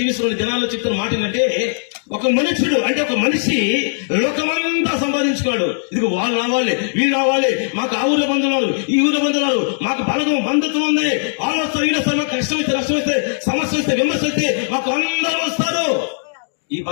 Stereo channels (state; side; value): silent; right; digital silence